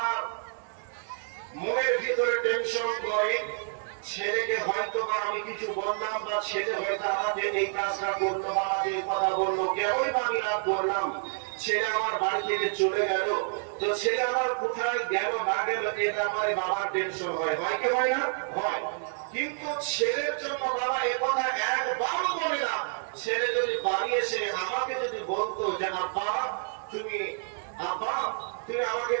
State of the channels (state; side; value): silent; left; digital silence